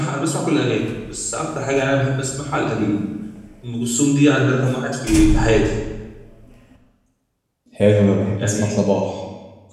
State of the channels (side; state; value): both; identical; correlation 1.00